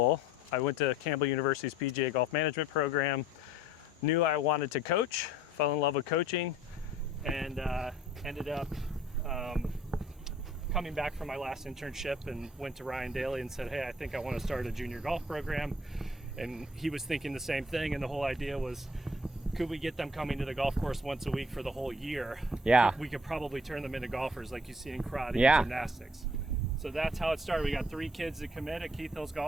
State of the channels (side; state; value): both; normal; correlation 0.57